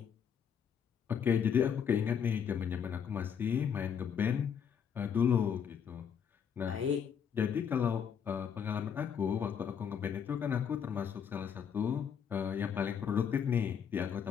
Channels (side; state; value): right; quieter; 7.6 dB